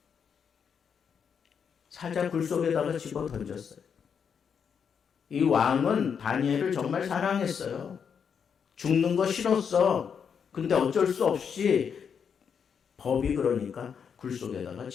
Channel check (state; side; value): quieter; right; 7.0 dB